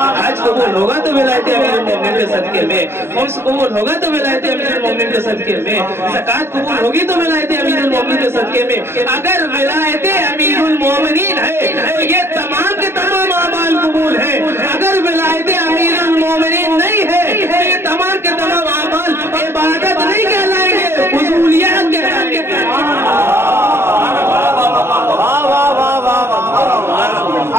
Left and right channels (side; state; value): left; late; 0.12 ms